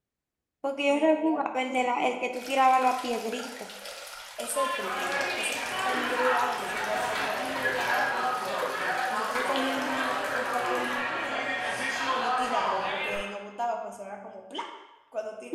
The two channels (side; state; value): both; identical; correlation 1.00